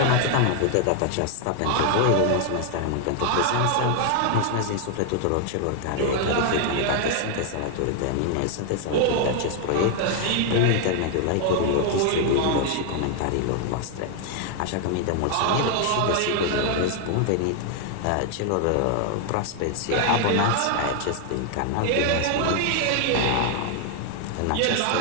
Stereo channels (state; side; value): different; both; correlation 0.00